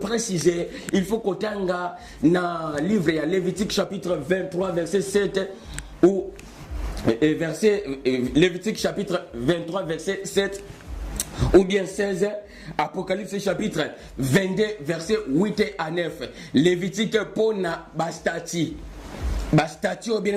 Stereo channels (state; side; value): identical; both; correlation 1.00